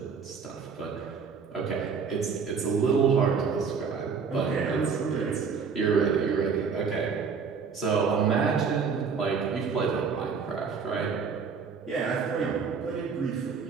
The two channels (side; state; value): left; quieter; 5.7 dB